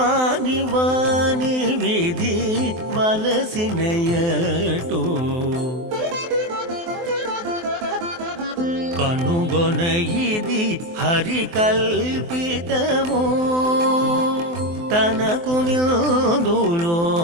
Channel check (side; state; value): left; late; 23 ms